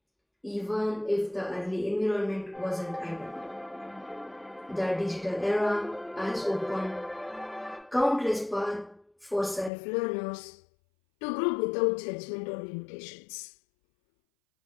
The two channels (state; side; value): drops out; right; at 9.7 s